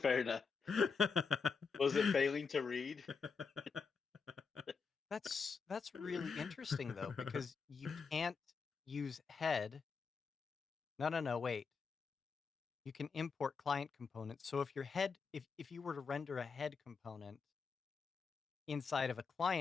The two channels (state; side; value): quieter; right; 5.4 dB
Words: enough. Was it failing to read? That's really interesting though, because you can't use head. No, wait. You can import client components. So if your head, if you were to render a head component inside of a